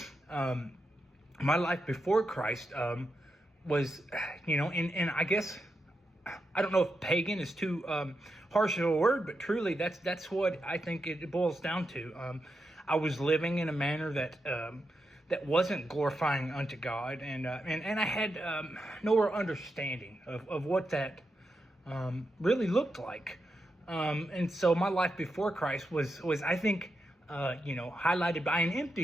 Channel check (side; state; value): both; normal; correlation 0.86